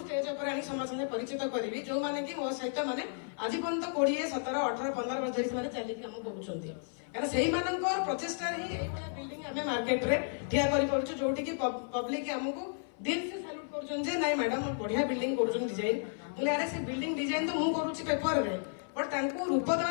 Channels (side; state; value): right; silent; 56 dB below the other